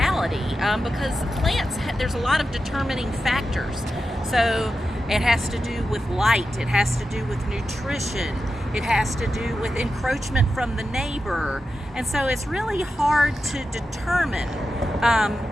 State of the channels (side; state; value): both; normal; correlation 0.91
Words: because plants, there's a lot of determining factors. So it has to do with light, it has to do with nutrition, it has to do with encroachment from the neighbor. And so it's really hard to determine